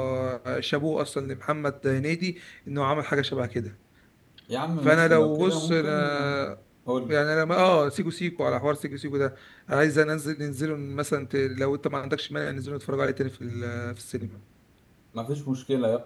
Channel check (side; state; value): both; identical; correlation 1.00